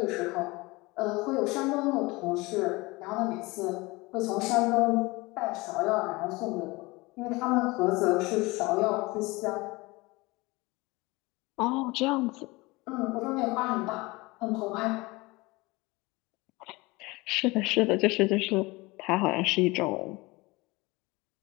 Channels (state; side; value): quieter; right; 23.1 dB